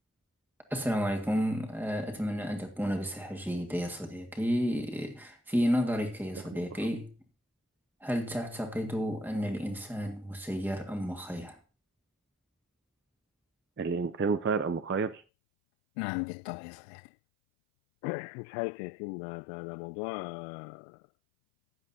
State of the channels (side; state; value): right; drops out; at 15.2 s